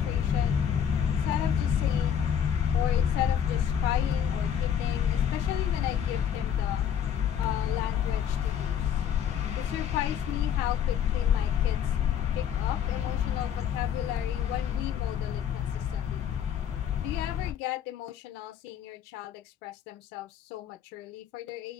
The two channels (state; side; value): quieter; right; 8.8 dB